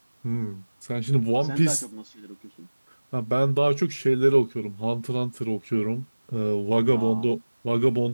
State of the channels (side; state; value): both; inverted; correlation -1.00